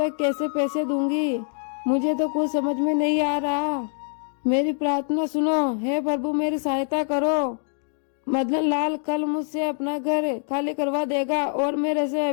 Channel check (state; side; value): silent; right; digital silence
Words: कैसे पैसे दूंगी, मुझे तो कुछ समझ में नहीं आ रहा, मेरी प्रार्थना सुनो, हे प्रभु मेरी सहायता करो। मदन लाल कल मुझसे अपना घर खाली करवा देगा और मेरे से